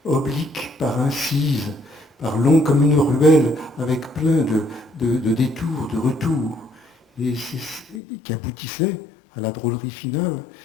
oblique par incise, par long comme une ruelle, avec plein de détours, de retours, et qui aboutissait à la drôlerie finale.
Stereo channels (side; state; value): right; drops out; at 8.0 s